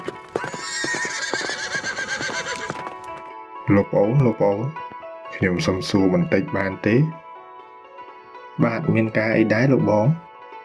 លោកប្អូនខ្ញុំសុំសួរបន្តិចបានទេបាទមានការអីដែរលោកបង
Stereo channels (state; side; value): identical; both; correlation 1.00